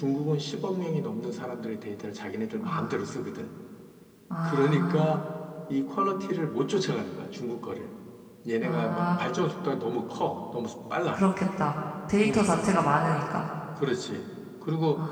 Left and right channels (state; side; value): identical; both; correlation 1.00